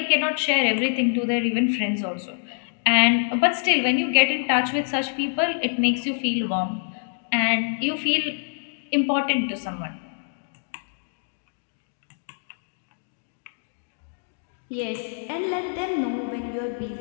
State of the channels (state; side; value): silent; right; digital silence